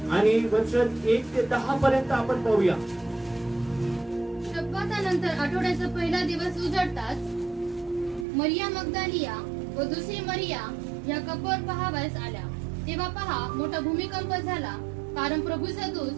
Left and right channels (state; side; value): drops out; left; at 8.2 s